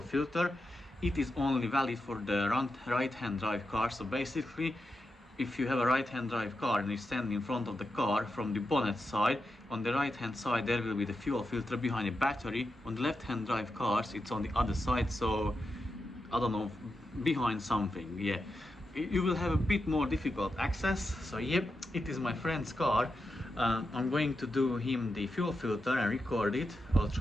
filter. It is only valid for the right-hand drive car. So basically, if you have a right-hand drive car and you stand in front of the car from the bonnet side, on the right-hand side there will be the fuel filter behind the battery. On the left-hand drive cars it's on the other side, so I don't know, behind something. Yeah, you will have a bit more difficult access. So yep, it is my friend's car. I'm going to do him the fuel filter and record it. I'll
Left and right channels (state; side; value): normal; both; correlation 0.88